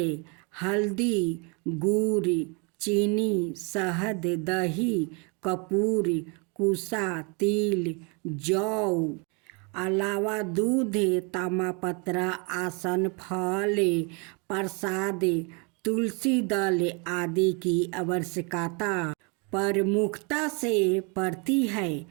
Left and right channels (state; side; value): quieter; left; 32.5 dB